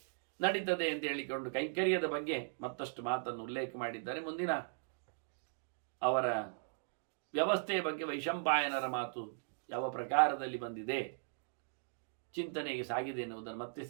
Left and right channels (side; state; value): left; silent; digital silence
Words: ನಡೀತದೆ ಅಂತ ಹೇಳಿಕೊಂಡು ಕೈಂಕರ್ಯದ ಬಗ್ಗೆ ಮತ್ತಷ್ಟು ಮಾತನ್ನು ಉಲ್ಲೇಖ ಮಾಡಿದ್ದಾರೆ. ಮುಂದಿನ ಅವರ ವ್ಯವಸ್ಥೆಯ ಬಗ್ಗೆ ವೈಶಂಪಾಯನರ ಮಾತು ಯಾವ ಪ್ರಕಾರದಲ್ಲಿ ಬಂದಿದೆ, ಚಿಂತನೆಗೆ ಸಾಗಿದೆ ಎನ್ನುವುದನ್ನು ಮತ್ತೆ